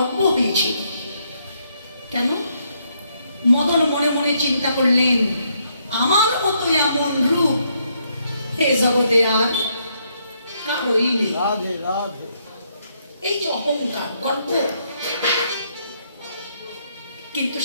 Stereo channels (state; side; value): inverted; both; correlation -0.74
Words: হয়েছিল। কেন? মদন মনে মনে চিন্তা করলেন, আমার মতো এমন রূপ হে জগতে আর কারোই নেই। এই যে অহংকার, গর্ব। কিন্তু